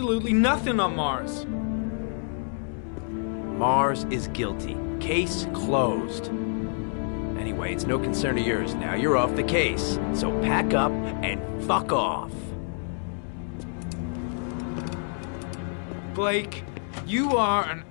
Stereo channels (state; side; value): silent; right; 60 dB below the other